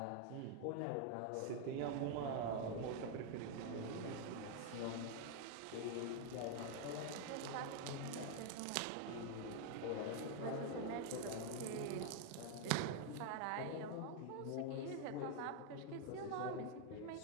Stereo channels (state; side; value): different; both; correlation 0.00